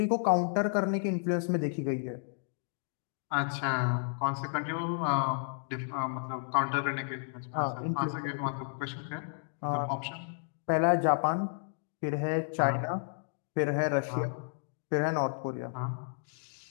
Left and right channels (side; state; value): right; silent; digital silence